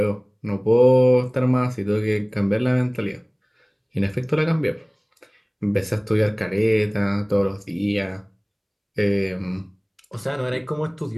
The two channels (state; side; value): identical; both; correlation 1.00